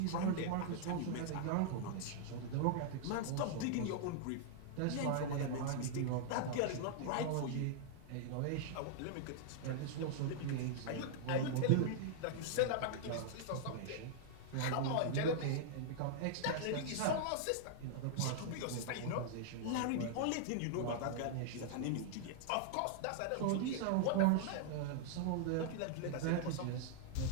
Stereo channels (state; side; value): different; both; correlation -0.01